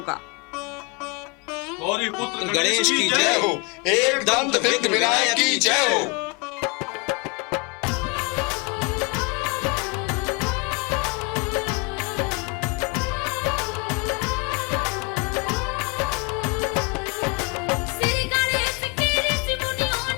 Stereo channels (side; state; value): right; quieter; 29.8 dB